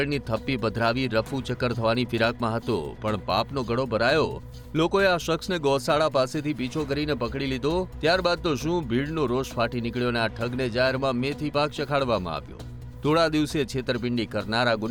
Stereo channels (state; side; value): identical; both; correlation 1.00